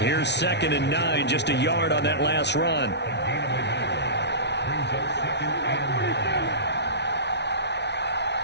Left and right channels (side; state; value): right; late; 0.50 ms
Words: 2nd and 9. Just a yard on that last run.